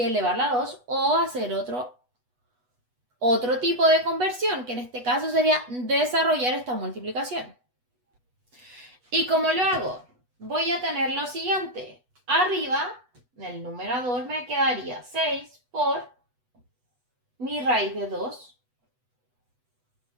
elevarla a 2 o hacer otro tipo de conversión, que en este caso sería desarrollar esta multiplicación. ¿Y cómo lo hago? Voy a tener lo siguiente. Arriba, en el numerador, me quedaría 6 por mi raíz de 2.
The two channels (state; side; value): late; left; 8.1 ms